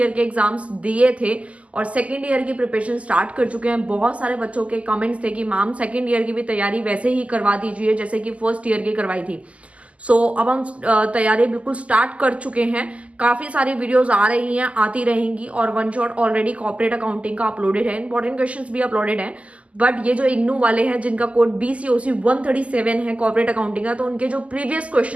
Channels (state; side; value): late; left; 0.065 ms